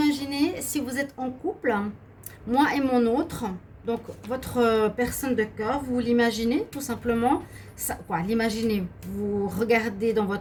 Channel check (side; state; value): both; identical; correlation 1.00